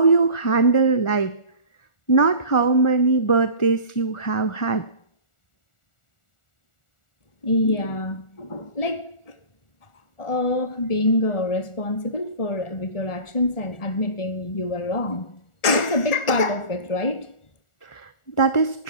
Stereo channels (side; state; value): right; late; 1.4 ms